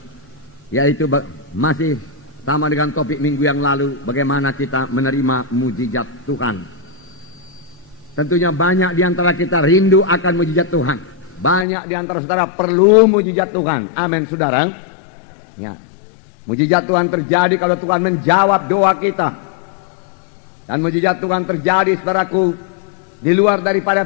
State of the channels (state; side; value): drops out; right; at 11.7 s